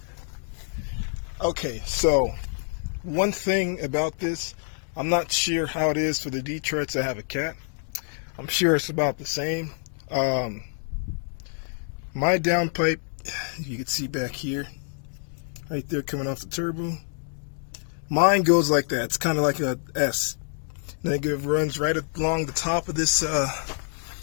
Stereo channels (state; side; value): silent; right; 60 dB below the other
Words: Okay, so one thing about this, I'm not sure how it is for the Detroits that have a cat. I'm sure it's about the same. My downpipe, you can see back here, right there coming off the turbo. Mine goes like that. It's kind of like a S. And it runs right along the top of this